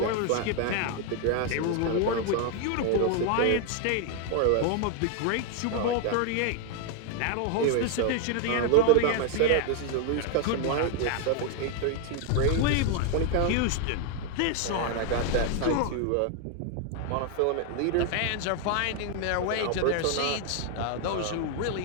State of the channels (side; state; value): both; different; correlation 0.01